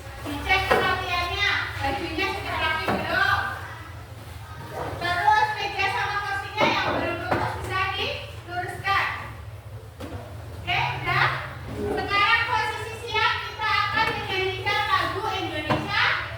dicek kerapiannya, bajunya sudah rapi belum? Terus meja sama kursinya yang belum lurus bisa diluruskan. Oke, udah? Sekarang posisi siap, kita akan menyanyikan lagu Indonesia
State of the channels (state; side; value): identical; both; correlation 1.00